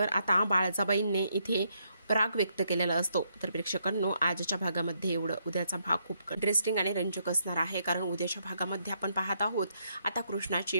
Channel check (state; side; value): inverted; both; correlation -0.75